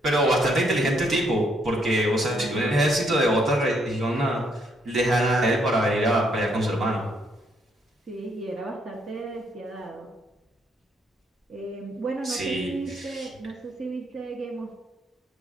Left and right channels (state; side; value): normal; both; correlation 0.72